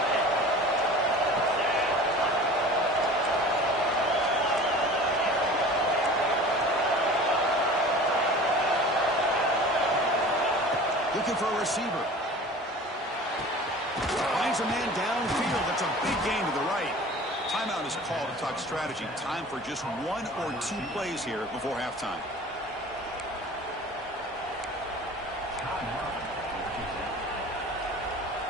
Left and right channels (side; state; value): both; normal; correlation 0.41